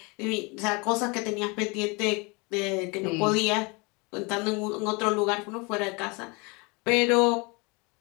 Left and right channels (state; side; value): quieter; right; 28.7 dB